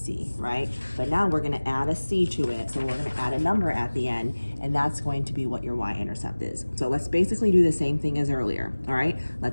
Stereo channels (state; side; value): inverted; both; correlation -1.00